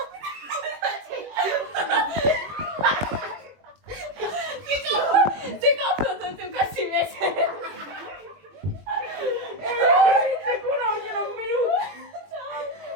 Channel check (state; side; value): late; left; 21 ms